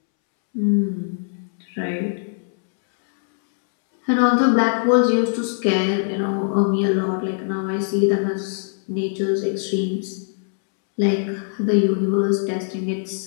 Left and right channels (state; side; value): silent; right; 65 dB below the other